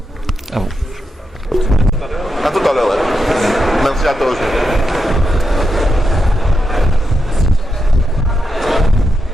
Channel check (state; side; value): normal; both; correlation 0.86